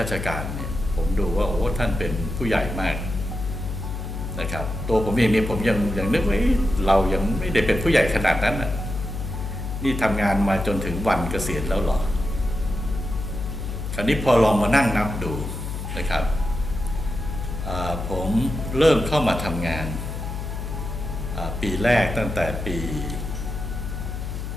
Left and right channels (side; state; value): left; noise; hum, 5 dB below the sound